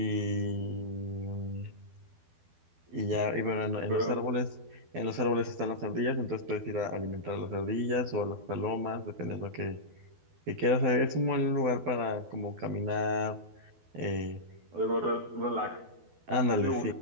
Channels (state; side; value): late; left; 12 ms